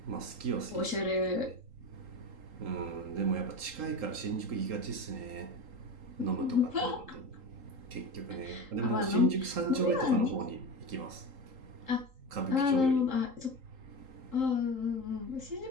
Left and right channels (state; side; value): late; left; 3.8 ms